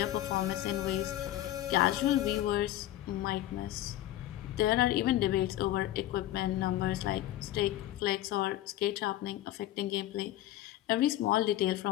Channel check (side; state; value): right; quieter; 14.1 dB